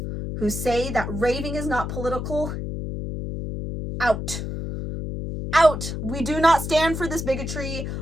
who say that raving is not political, out. Out. We do not stand for this bigotry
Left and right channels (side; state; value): left; noise; hum, 5 dB below the sound